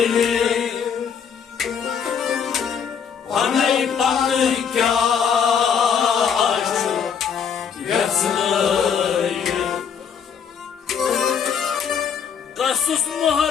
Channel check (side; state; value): right; quieter; 7.2 dB